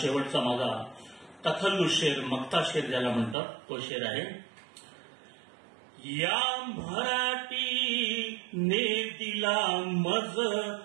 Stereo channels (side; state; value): left; drops out; at 3.4 s